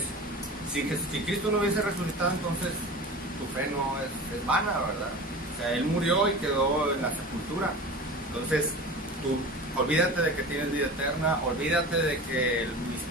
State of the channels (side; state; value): both; normal; correlation 0.34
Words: Si Cristo no hubiese resucitado, entonces tu fe no es vana, ¿verdad? O sea, Él murió y quedó en la sepultura. Entonces, tú olvídate de que tienes vida eterna, olvídate de que